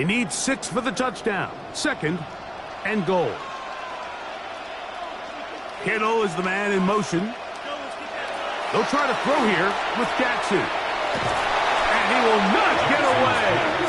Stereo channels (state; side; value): identical; both; correlation 1.00